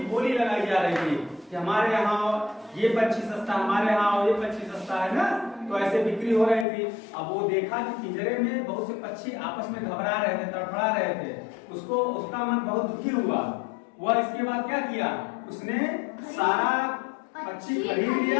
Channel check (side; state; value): right; drops out; at 6.7 s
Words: बोली लगाई जा रही थी कि हमारे यहाँ ये पक्षी सस्ता, हमारे यहाँ ये पक्षी सस्ता है ना। तो ऐसे बिक्री हो रही थी। अब वो देखा कि पिंजरे में बहुत से पक्षी आपस में घबरा रहे थे, तड़फड़ा रहे थे। उसका मन बहुत दुखी हुआ। वह इसके बाद क्या किया, उसने सारा पक्षी खरीद